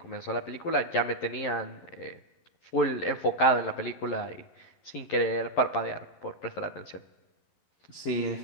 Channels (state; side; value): late; right; 11 ms